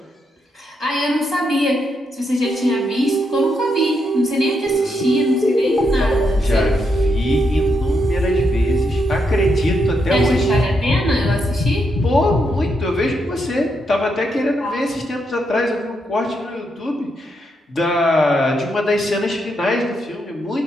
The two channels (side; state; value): both; normal; correlation 0.80